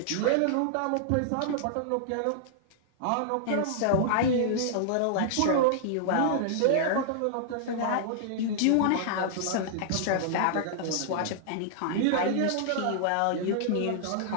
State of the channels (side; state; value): both; different; correlation -0.01